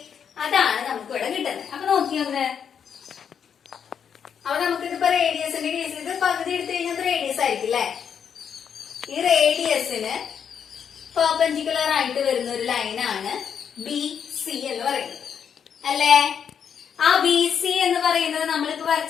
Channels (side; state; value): right; quieter; 7.7 dB